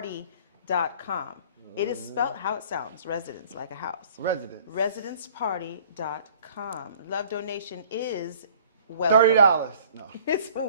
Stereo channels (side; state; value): both; inverted; correlation -0.53